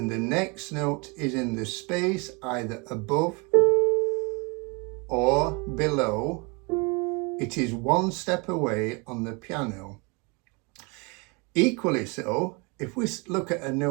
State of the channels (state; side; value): quieter; left; 30.1 dB